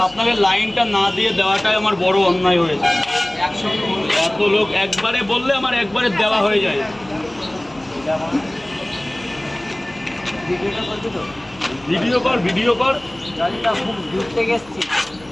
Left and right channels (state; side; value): noise; left; hum, 25 dB below the sound